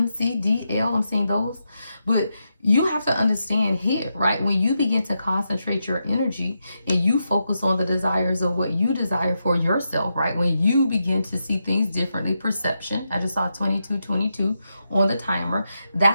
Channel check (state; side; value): inverted; both; correlation -0.85